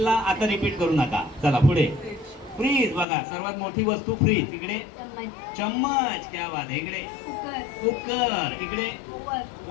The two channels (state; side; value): drops out; right; at 3.1 s